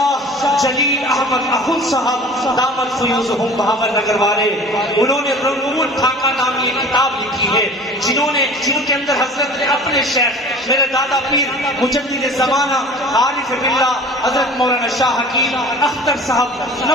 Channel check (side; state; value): both; normal; correlation 0.43